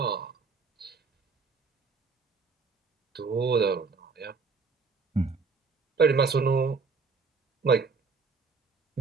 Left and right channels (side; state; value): left; quieter; 4.7 dB